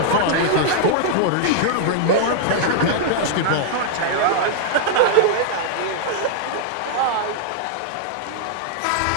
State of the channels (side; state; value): both; different; correlation -0.01